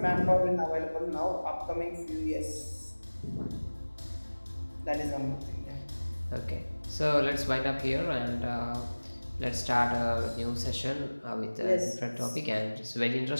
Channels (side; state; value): both; inverted; correlation -1.00